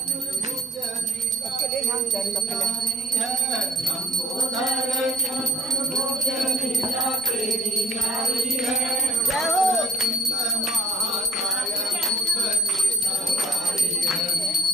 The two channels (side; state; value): both; normal; correlation 0.54